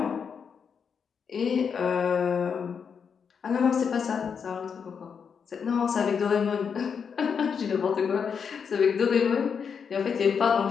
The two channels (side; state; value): right; quieter; 6.5 dB